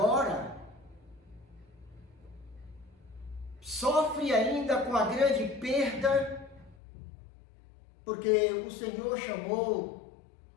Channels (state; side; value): drops out; right; at 6.8 s